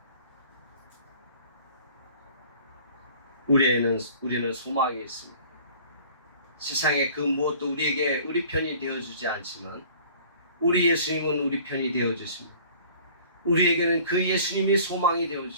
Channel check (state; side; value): inverted; both; correlation -0.49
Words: 우리는 소망이 있습니다. 세상의 그 무엇도 우리에게 우리 편이 되어주지 않지만 우리 예수님은 우리 편이 되어주십니다. 우리에게는 그 예수님이 소망이